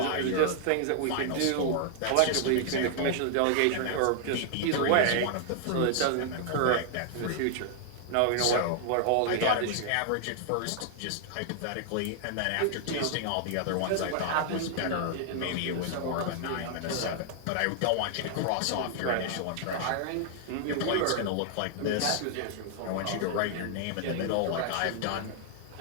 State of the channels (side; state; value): both; different; correlation 0.00